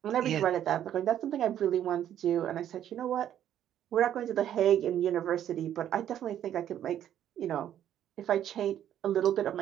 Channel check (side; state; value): left; quieter; 10.8 dB